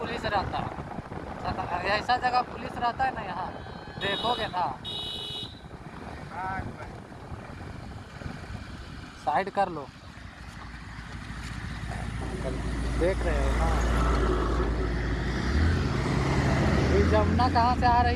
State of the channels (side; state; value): both; identical; correlation 1.00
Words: रहता है। ऐसा जगह पुलिस रहता है ना, यहाँ देखोगे ना। साइड कर लो, देख रहे हो ना। ये जमुना कहाँ से आ रही